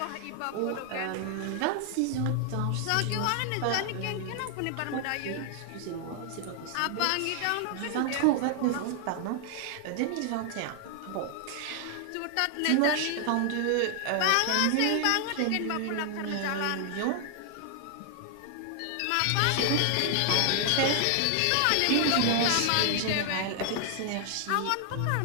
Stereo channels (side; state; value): both; different; correlation 0.00